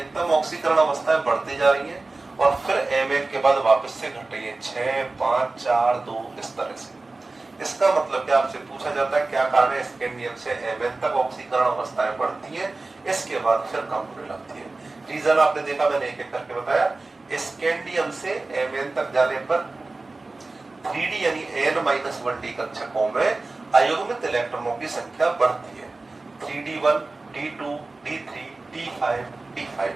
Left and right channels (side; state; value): left; quieter; 3.4 dB